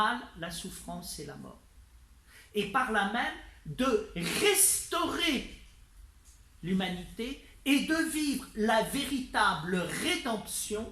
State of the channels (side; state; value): both; identical; correlation 1.00